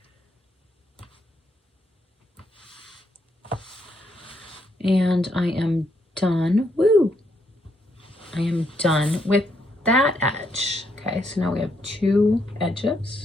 And I am done. Woo! I am done with that edge. Okay, so now we have 2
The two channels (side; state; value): both; normal; correlation 0.76